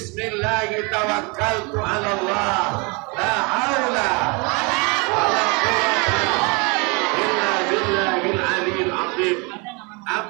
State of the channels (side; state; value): left; quieter; 30.1 dB